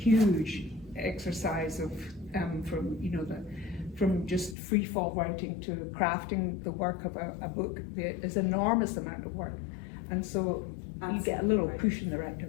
exercise of from just free fall writing to crafting the work of a book. There's an enormous amount of work, and so you get a little push in the right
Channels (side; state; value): right; drops out; at 4.5 s